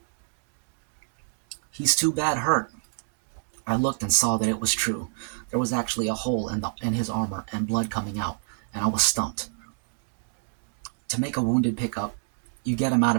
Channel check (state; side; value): silent; left; digital silence